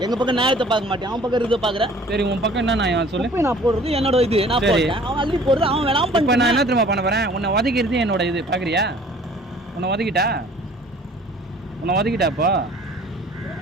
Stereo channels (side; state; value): both; normal; correlation 0.51